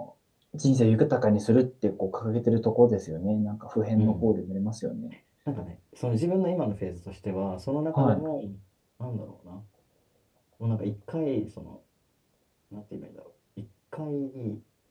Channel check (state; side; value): identical; both; correlation 1.00